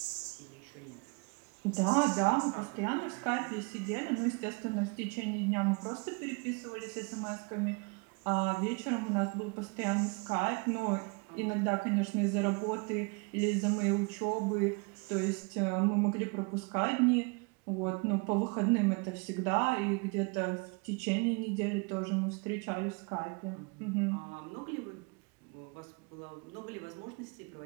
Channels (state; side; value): quieter; left; 31.6 dB